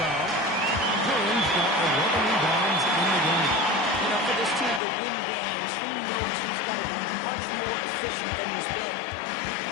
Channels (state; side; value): drops out; right; at 4.8 s